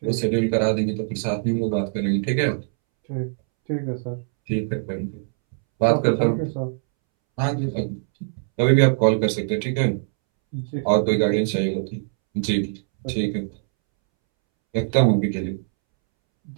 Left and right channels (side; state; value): left; silent; 64 dB below the other